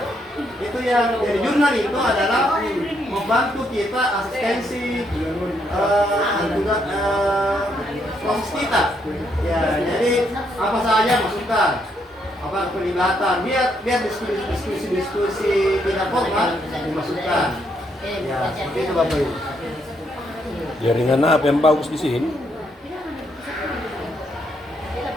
Itu yang dari jurnal itu adalah membantu kita asistensi juga proses kita. Ya, jadi apa saja masukkan, apa pelibatan, biar diskusi tidak formal dimasukkan. Ya, seperti itu Bapak Ibu. Jaringan apa yang bagus di sini?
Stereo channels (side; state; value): both; normal; correlation 0.75